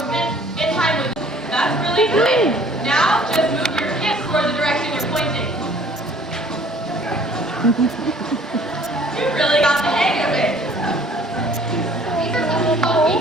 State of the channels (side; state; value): both; normal; correlation 0.55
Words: in time with this. That's really good. Now, just move your hips toward the direction you're pointing. You really got the hang of it. These are some called